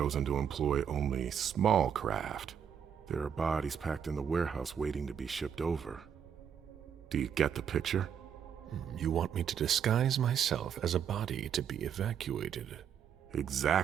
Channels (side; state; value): left; quieter; 8.1 dB